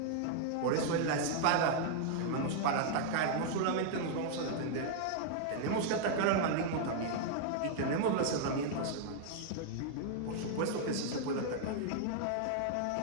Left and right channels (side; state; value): both; different; correlation -0.01